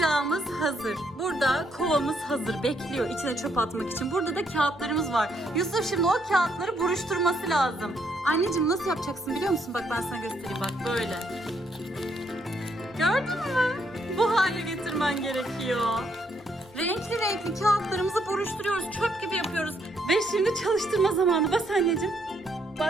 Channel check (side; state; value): both; normal; correlation 0.73